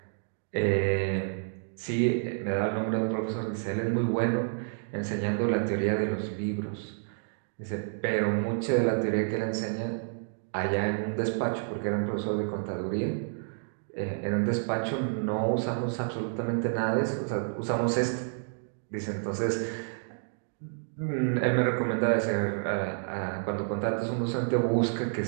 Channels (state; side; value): silent; left; digital silence